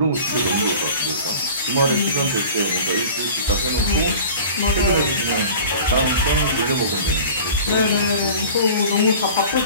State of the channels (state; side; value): inverted; both; correlation -0.41